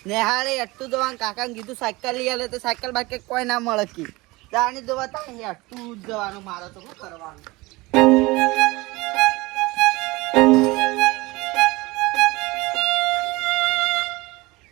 નેહાળે એટલું જવાનું, કાકાને કીધું સાયકલ લઈ આલે, તો સાયકલ બાકી કોઈ ના મળે કી. ગાડી જોવા તાણી એટલું જ જવાનું, મારે તો શું કરવાનું?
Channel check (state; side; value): quieter; left; 22.2 dB